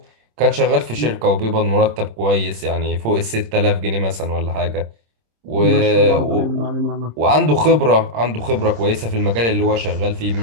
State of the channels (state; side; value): late; left; 26 ms